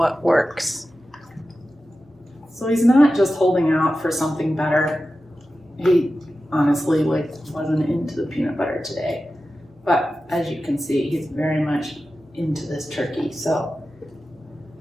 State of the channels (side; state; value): both; normal; correlation 0.93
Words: works. So he's not just holding out for something better. He honestly wasn't into the peanut butter today. But as you can see, he's very much into this turkey. So